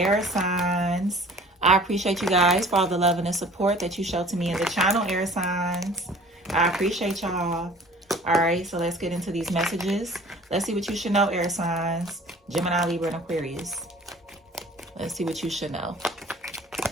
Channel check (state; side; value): normal; both; correlation 0.48